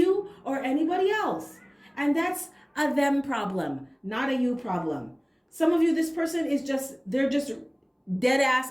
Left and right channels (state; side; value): identical; both; correlation 1.00